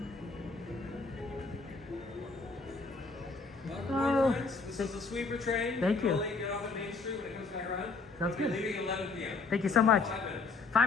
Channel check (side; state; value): right; quieter; 4.3 dB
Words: Welcome, friends. This is the sweeper train. Thank you. We'll get off at Main Street when it comes back around. Sounds good. We'll be leaving at 11 p.m. Thank you so much. 5 minutes.